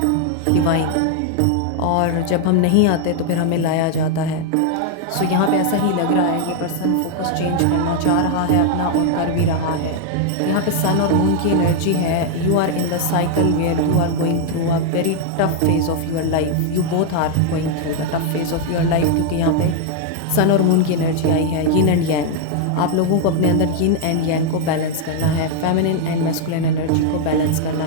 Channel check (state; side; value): different; both; correlation 0.00